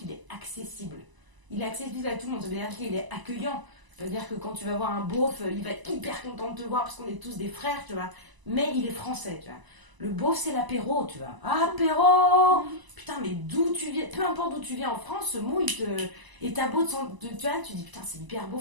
il est accessible. Il est accessible à tout le monde, ça veut dire qu'il est accueillant. Ça veut dire que quand tu vas voir un beauf, il va être hyper content de te voir parce qu'on est tous des frères, tu vois. Mais il est français, tu vois. Le beauf, c'est l'apéro, tu vois. Ah, apéro. Putain, mais d'où tu viens, peu importe d'où tu viens en France, ce mot, il te... Et t'as beau tu vois, tu dis putain, c'est hyper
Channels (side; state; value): left; late; 1.0 ms